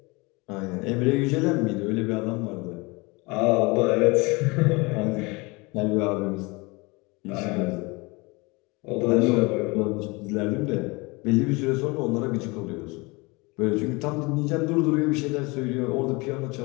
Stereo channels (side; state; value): right; quieter; 25.9 dB